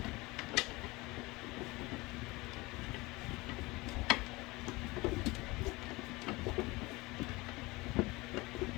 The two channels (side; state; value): right; quieter; 22.5 dB